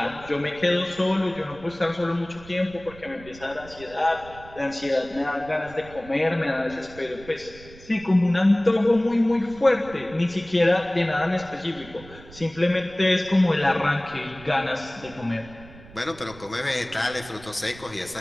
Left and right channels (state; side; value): noise; right; rumble, 19 dB below the sound